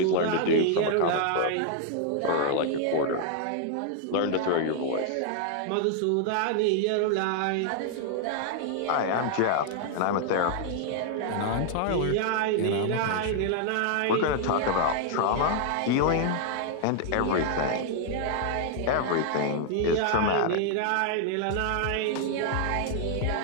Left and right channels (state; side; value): different; both; correlation 0.00